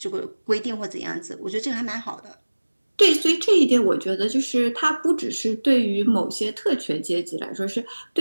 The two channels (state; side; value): inverted; both; correlation -1.00